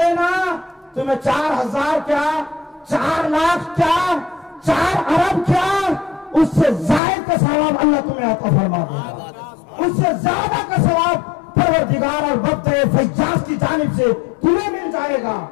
تمہیں 4000 کیا، 4 لاکھ کیا، 4 ارب کیا، اس سے زائد کا ثواب اللہ تمہیں عطا فرما دے گا، اس سے زیادہ کا ثواب پروردگار اور وقت فیاض کی جانب سے تمہیں مل جائے گا۔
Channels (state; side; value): drops out; right; at 7.0 s